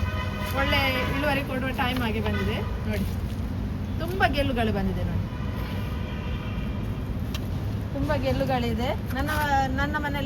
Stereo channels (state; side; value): identical; both; correlation 1.00